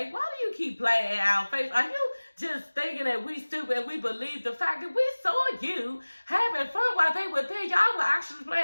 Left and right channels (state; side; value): inverted; both; correlation -1.00